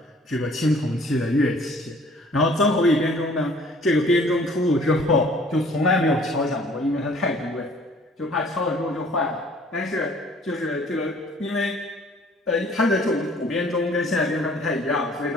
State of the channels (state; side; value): normal; both; correlation 0.55